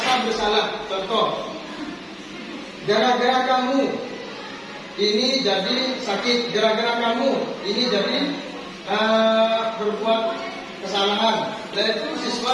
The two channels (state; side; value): identical; both; correlation 1.00